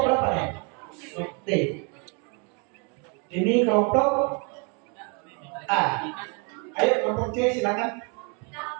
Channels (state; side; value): quieter; left; 34.3 dB